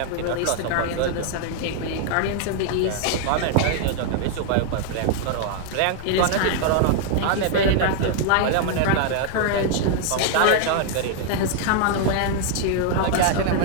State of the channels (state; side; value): different; both; correlation 0.00